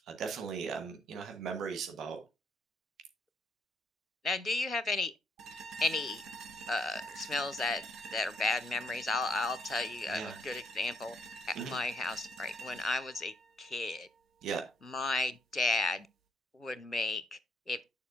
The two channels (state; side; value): normal; both; correlation 0.72